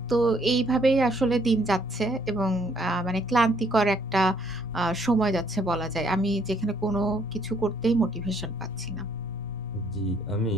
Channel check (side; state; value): both; normal; correlation 0.67